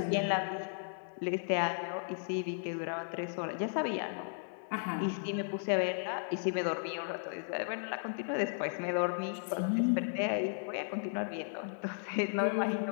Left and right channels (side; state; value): right; silent; digital silence